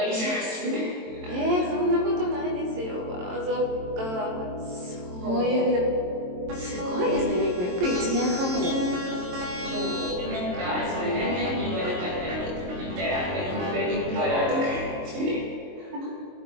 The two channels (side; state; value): left; late; 22 ms